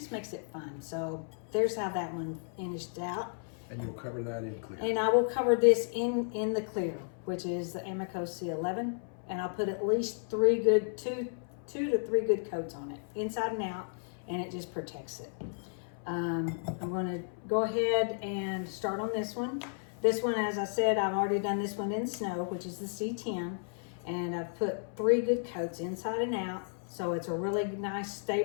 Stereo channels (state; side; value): silent; right; 56 dB below the other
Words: makes it fun. So there's how that one finished out. And you'll cover that in clear. And I will cover this in the clear, which is the Amaco C-11. And I'll put at least two to three good coats on it, inside and out, and it just protects it. I'm going to go ahead and start on this one. This one, as I said, I've already done this one in snow, which is the C10, and I've put 3 good coats inside and out, so it's a really nice